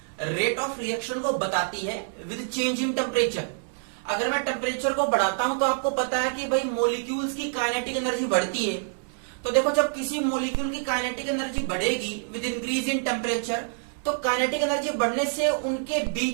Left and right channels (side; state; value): left; silent; 60 dB below the other